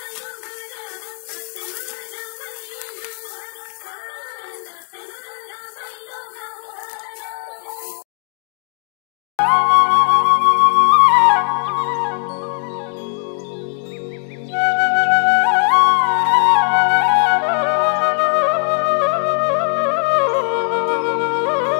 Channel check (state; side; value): silent; right; 56 dB below the other